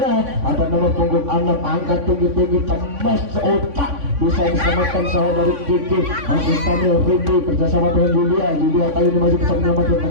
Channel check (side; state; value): left; late; 3.5 ms